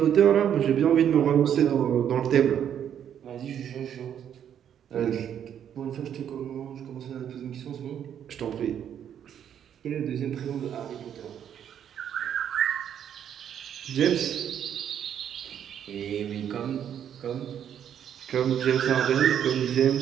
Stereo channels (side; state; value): left; quieter; 9.3 dB